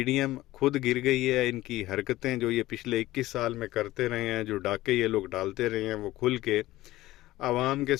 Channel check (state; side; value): quieter; right; 16.8 dB